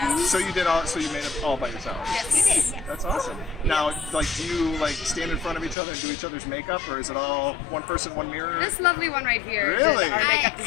So you made it all by yourself? Yes. You did, yes. That's awesome. Now, like, do you like stand in front of each other and do each other's makeup, or is it all one person, one mirror? This lovely one right here Really? did our makeup I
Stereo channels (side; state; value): right; drops out; at 5.8 s